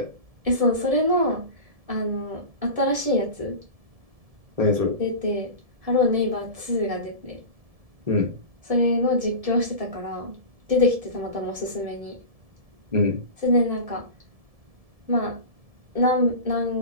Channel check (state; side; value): late; left; 1.7 ms